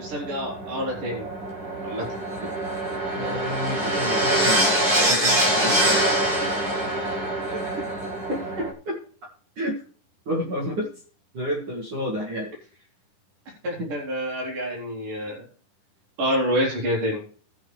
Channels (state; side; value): late; left; 10 ms